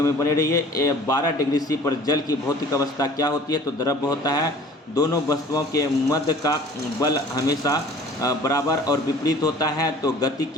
में बने रहिए। 12 डिग्री सी पर जल की भौतिक अवस्था क्या होती है? तो द्रव्य होता है। दोनों वस्तुओं के मध्य का बल हमेशा बराबर और विपरीत होता है, तो गति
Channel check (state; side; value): normal; both; correlation 0.47